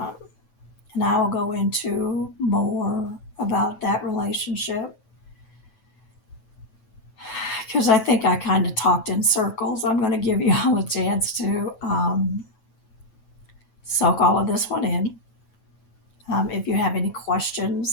I will go into more about that relationship because I think I kind of talked in circles. I'm going to give you all a chance to soak all of this one in. If you have any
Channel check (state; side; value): late; right; 9.1 ms